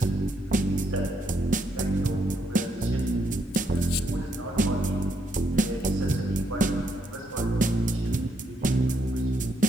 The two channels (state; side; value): normal; both; correlation 0.76